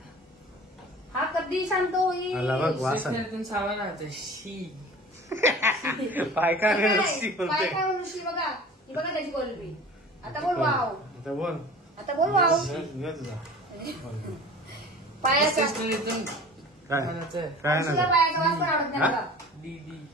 हा कधी शांत होईल आला बघ वास आहे. स्टेशनरीतून सामान आणतं शी पाय काय काय रस्सी बोलते काय म्हणून श्री बघा ही बघा त्याची कोलबी आता बोल वाव आता बोल आता बोल वाव घे तुझा. बोल. पायाचा स्टेशनरीतून काय आणायचं काय अंशूला ना पायाचा वास पण आवडत नाही हा? बघा. डी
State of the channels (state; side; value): normal; both; correlation 0.42